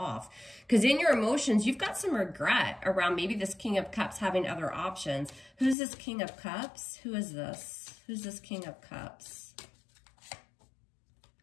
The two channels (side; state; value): right; drops out; at 5.8 s